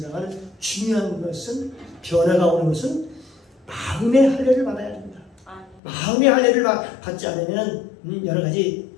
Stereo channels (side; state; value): right; drops out; at 5.8 s